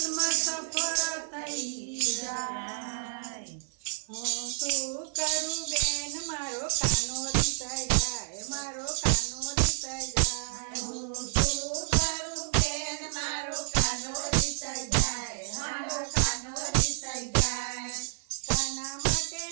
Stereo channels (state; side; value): silent; left; 58 dB below the other